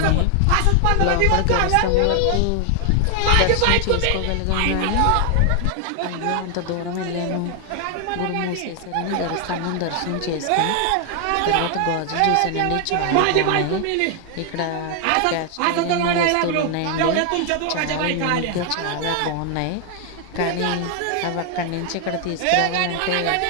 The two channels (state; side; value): different; both; correlation 0.00